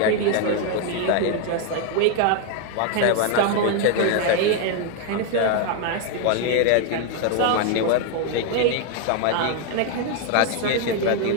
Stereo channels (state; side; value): different; both; correlation 0.00